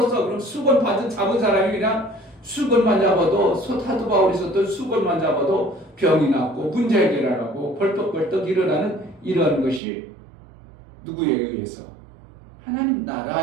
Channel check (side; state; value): left; drops out; at 9.8 s